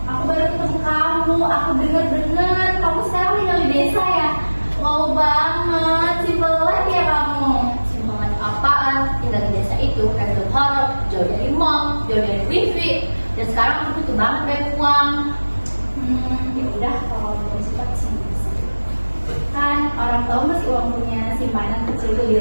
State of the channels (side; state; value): both; inverted; correlation -1.00